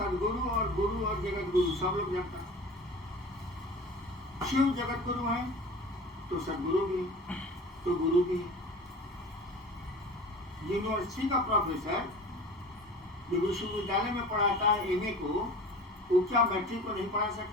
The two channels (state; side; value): normal; both; correlation 0.39